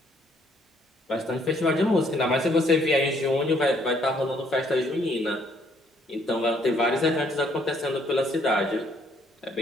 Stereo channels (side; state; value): both; normal; correlation 0.66